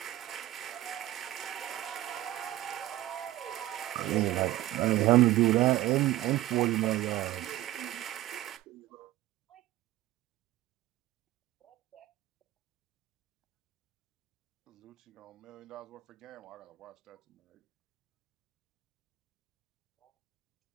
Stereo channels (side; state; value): left; quieter; 15.4 dB